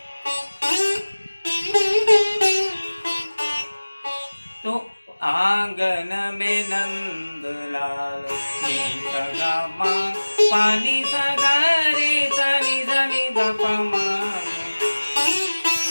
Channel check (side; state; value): both; inverted; correlation -1.00